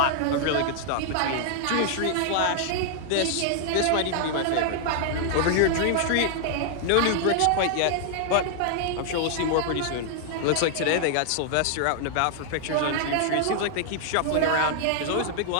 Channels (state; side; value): different; both; correlation 0.00